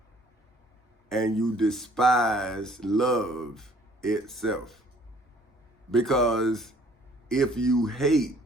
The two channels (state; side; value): normal; both; correlation 0.57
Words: and you despise love itself? Because if you hate,